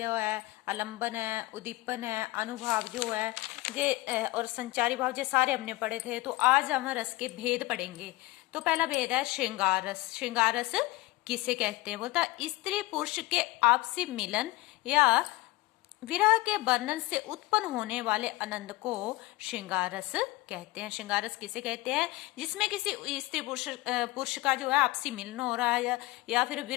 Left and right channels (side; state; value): right; quieter; 20.1 dB